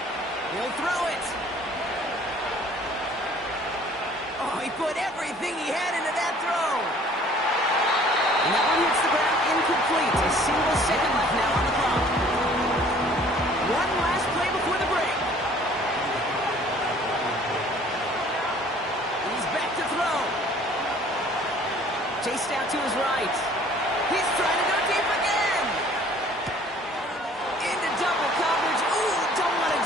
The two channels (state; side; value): normal; both; correlation 0.54